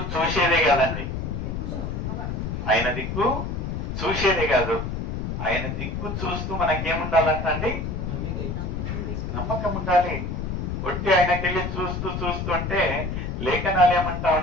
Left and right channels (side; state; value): left; noise; rumble, 3 dB below the sound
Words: చూసేదే కదండి, ఆయన దిక్కు చూసేదే కాదు, ఆయన దిక్కు చూస్తూ మనకేముండాలంటండి? నమ్మకం ఉండాలి. ఒట్టి ఆయనకెళ్ళి చూస్తూ చూస్తూ అంటే లేఖనాలు ఏమంటా